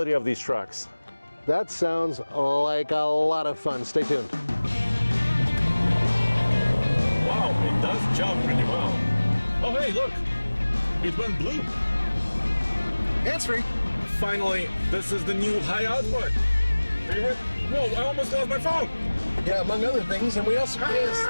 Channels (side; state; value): both; inverted; correlation -1.00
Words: of these trucks. That sounds like a lot of fun. Stay tuned. Wow, it does jump pretty well. Oh, hey, look. It went blue. Hands-free. Finally, this is the new high output. Favorite? Whoa, I almost lost my phone. Yeah, among other things. And we also,